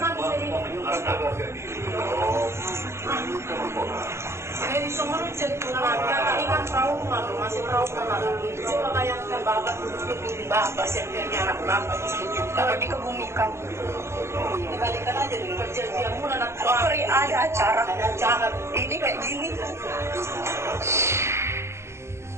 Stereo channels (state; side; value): late; left; 0.13 ms